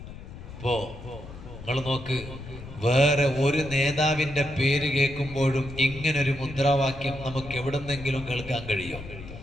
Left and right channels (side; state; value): left; noise; rumble, 13 dB below the sound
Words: ഇപ്പോ നിങ്ങൾ നോക്ക്, വേറെ ഒരു നേതാവിന്റെ പേര് കേൾക്കുമ്പോഴും ഇങ്ങനൊരു മുദ്രാവാക്യം നമുക്ക് എവിടുന്നെങ്കിലും കേൾക്കാൻ കഴിയും?